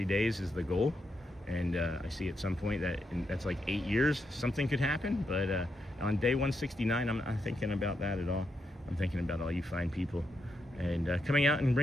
days is the goal. And I see at some point that that's like 8 years, something could happen. But on day 169, I'm not thinking about that at all. I'm thinking about all you fine people and coming out and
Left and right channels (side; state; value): both; normal; correlation 0.83